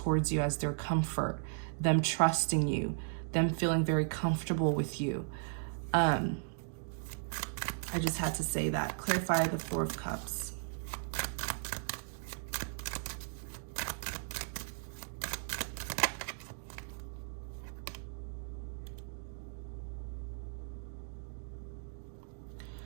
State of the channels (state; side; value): silent; left; digital silence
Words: you as their comfort, them trusting you, them feeling very comfortable with you. I just had to say that. Clarify the Four of Cups.